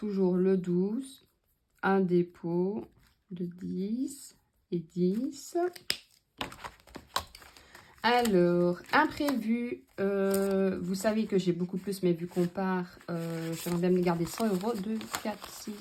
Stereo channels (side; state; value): both; identical; correlation 1.00